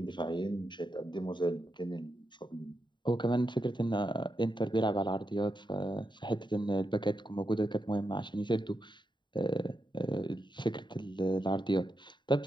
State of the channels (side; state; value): right; late; 0.22 ms